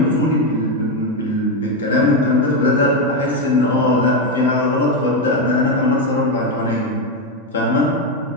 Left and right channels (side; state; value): both; normal; correlation 0.08